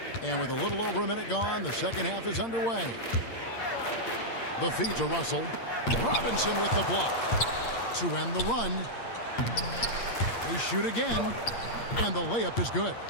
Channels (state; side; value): late; right; 8.6 ms